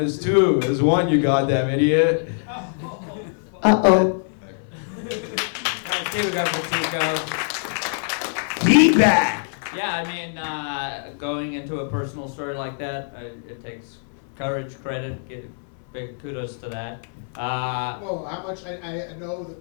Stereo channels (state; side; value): silent; right; 62 dB below the other